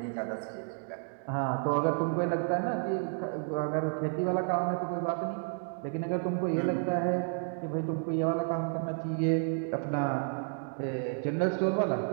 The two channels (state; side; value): silent; left; 57 dB below the other